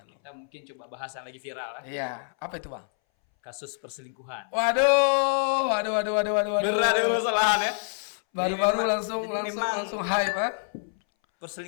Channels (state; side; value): silent; right; 60 dB below the other